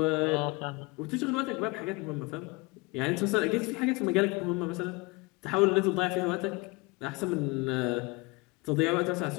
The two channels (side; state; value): right; quieter; 25.5 dB